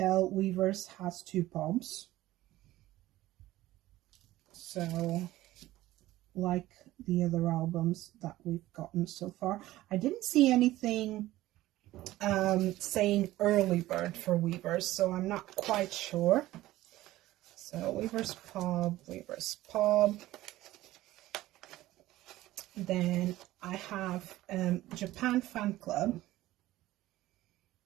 Weverse has 2 pops. So, like the other albums that we've gotten so far. I didn't see anything saying early bird for Weverse, so I'm not quite sure. So Weverse Pop. Then I have Japan Fan Club.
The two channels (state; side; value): quieter; left; 16.2 dB